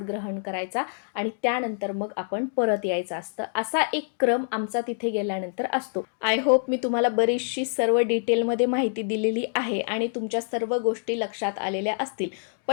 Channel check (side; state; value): right; silent; digital silence